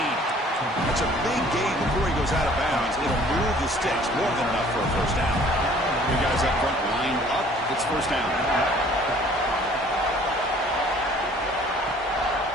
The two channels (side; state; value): both; normal; correlation 0.54